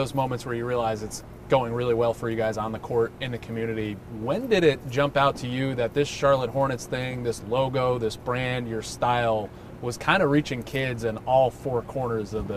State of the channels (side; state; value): both; identical; correlation 1.00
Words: moments where you realize it's going really well for you guys on the court, in the community. When did it jump out to you that this Charlotte Hornets thing, this logo, this brand, your style, was kind of reaching kids in all four corners of